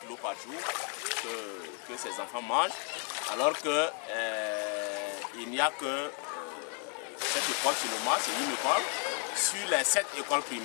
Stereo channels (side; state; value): right; quieter; 39.7 dB